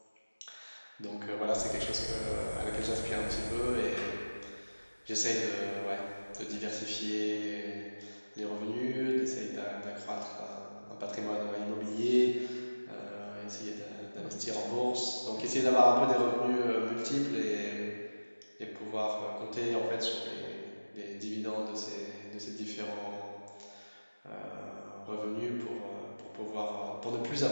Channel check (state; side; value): inverted; both; correlation -1.00